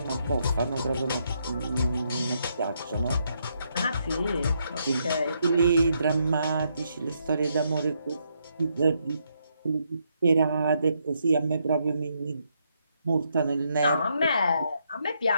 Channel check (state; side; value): inverted; both; correlation -0.77